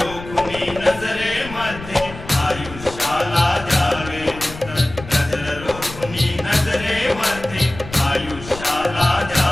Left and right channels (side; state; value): left; noise; rumble, 14 dB below the sound